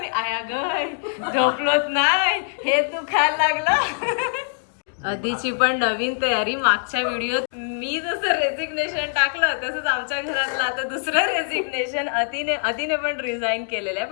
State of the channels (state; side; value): silent; right; digital silence